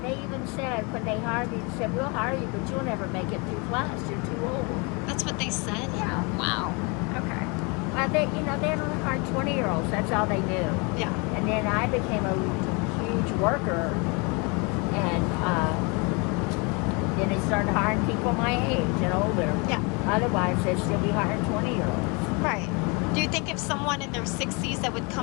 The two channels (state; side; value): quieter; right; 30.5 dB